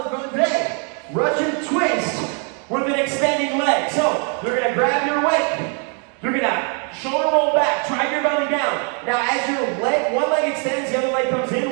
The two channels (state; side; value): quieter; left; 39.4 dB